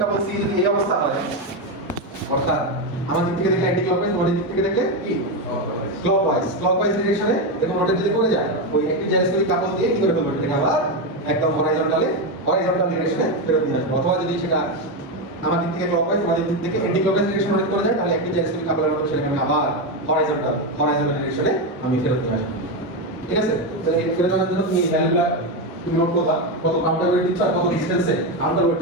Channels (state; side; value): normal; both; correlation 0.10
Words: কাপল সি যদি এই অবস্থা হয়, অর্থাৎ আমার দিক থেকে দেখলে অ্যান্টি ক্লকওয়াইজ, তোমাদের দিক থেকে দেখলে কি ক্লকওয়াইজ ডিরেকশনে দেখো রোটেট যদি করে যায়, ওই একটি জাইরোস্কোপিক কাপল দিয়ে কি করে ফেলবে? এটাকে আবার একদম হরাইজন্টাল ডিরেকশনে ফেরত নিয়ে আসবে। অথবা যদি সেটা আমার দিক থেকে ক্লকওয়াইজ, তোমাদের দিক থেকে অ্যান্টি ক্লকওয়াইজ ডিরেকশন রোটেট করে যায়, তাহলে একটি জাইরোস্কোপিক কাপলের মতো সেটাকে আমি আবার হরাইজন্টাল ডিরেকশনে আমি ফেরত নিয়ে আসবো, ঠিক আছে। তাহলে এই ফেরত আনার জন্য তুমি ভ্যালুটা তুমি নোট করবা, কত কাউন্টার ওয়েট দিচ্ছ আর কত ডিসটেন্সে কাউন্টার